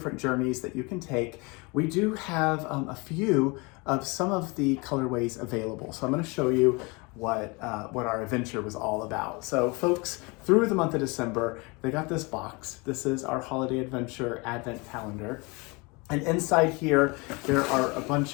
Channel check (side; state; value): right; quieter; 27.7 dB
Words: journeys that you can take. We do have a few of some of the colorways available. So I'm going to show you what our adventure was all about. So folks, through the month of December, they got this box. This is our holiday adventure advent calendar. And inside here, there are a bunch